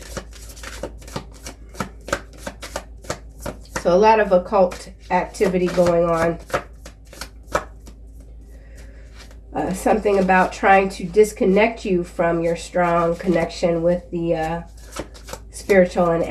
So a lot of occult activity going on. Something about trying to disconnect you from your strong connection with the spiritual and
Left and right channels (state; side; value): identical; both; correlation 1.00